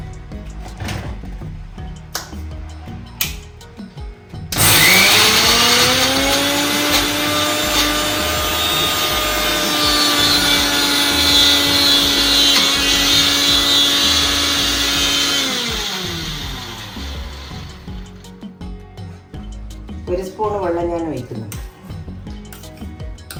ഒരു സ്പൂൺ വെള്ളം ഞാൻ ഒഴിക്കുന്നുണ്ട്.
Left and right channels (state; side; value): identical; both; correlation 1.00